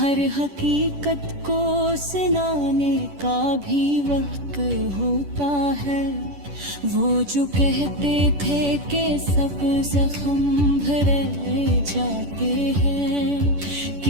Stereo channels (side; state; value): left; late; 10 ms